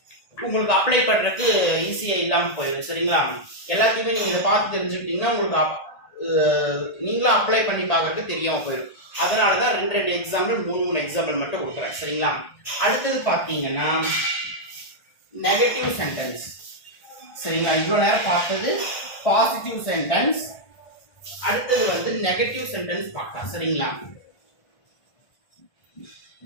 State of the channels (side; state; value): right; late; 1.5 ms